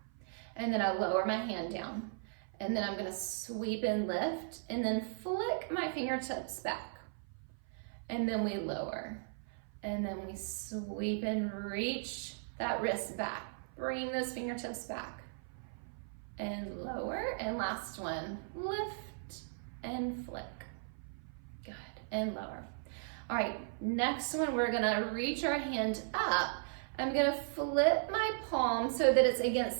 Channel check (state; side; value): silent; left; 53 dB below the other